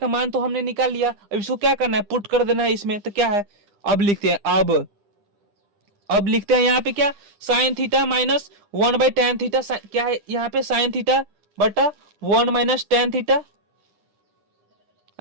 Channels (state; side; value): late; left; 9.9 ms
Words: मान तो हमने निकाल लिया, अब इसको क्या करना है पुट कर देना है इसमें। तो क्या है अब लिखते हैं, अब लिखते हैं यहाँ पे क्या sine theta minus 1/tan theta, क्या है यहाँ पे साइन थीटा बटा 1 minus tan theta,